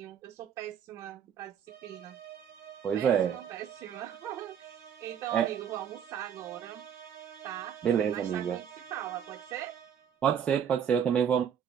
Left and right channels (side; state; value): left; quieter; 8.4 dB